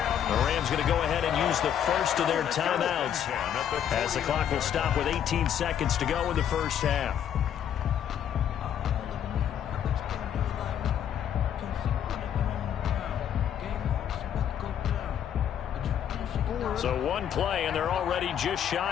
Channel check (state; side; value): quieter; right; 9.4 dB